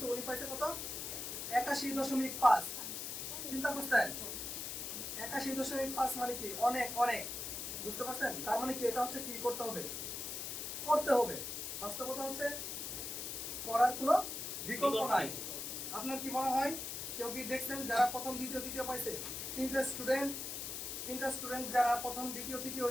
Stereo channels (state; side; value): noise; left; hiss, 5 dB below the sound